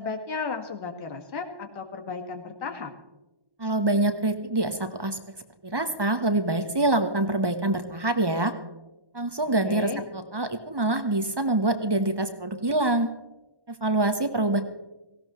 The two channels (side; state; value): left; late; 1.1 ms